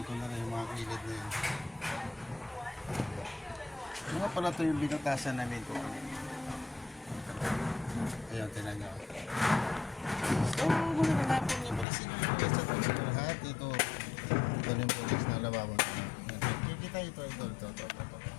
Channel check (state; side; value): drops out; right; at 11.9 s